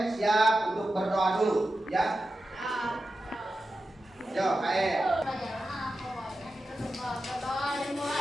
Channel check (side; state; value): both; normal; correlation 0.92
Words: siap untuk berdoa dulu, ya? Yo, KM.